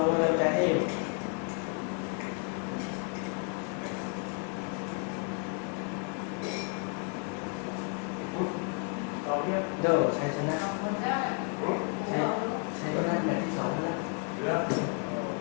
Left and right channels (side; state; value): right; quieter; 39.5 dB